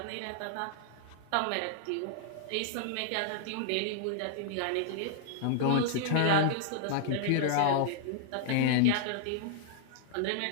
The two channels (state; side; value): different; both; correlation -0.01